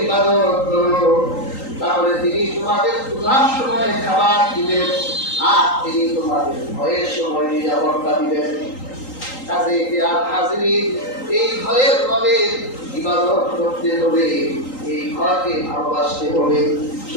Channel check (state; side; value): late; right; 3.8 ms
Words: ইবাদত করো, তাহলে তিনি তোমাদের ক্ষুধার সময় খাবার দিবেন, আর তিনি তোমাদের ভয়ের সময় নিরাপত্তা দিবেন। কাজে হাজিরিন, এই ঘরের রবে ইবাদত করতে হবে, এই ঘরকে ভালোবাসতে হবে।